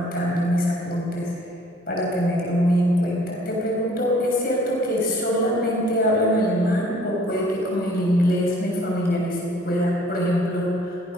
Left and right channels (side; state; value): both; normal; correlation 0.56